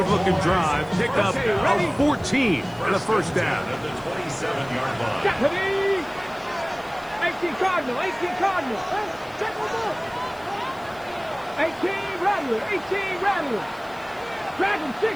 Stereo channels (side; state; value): left; noise; hiss, 26 dB below the sound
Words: drive. Pick up a 14 and a first down. At the 27-yard line. Deputy. 18 Cardinal, 18 Cardinal. 18 Rattler, 18 Rattler. Dragon